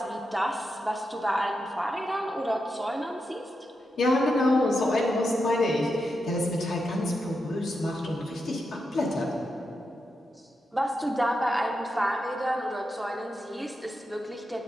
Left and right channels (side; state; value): both; normal; correlation 0.86